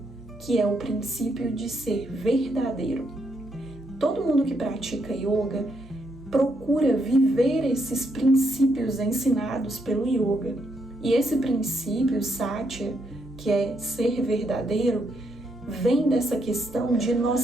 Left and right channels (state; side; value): normal; both; correlation 0.77